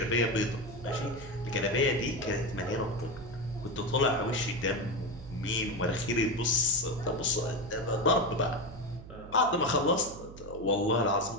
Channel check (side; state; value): right; noise; hum, 15 dB below the sound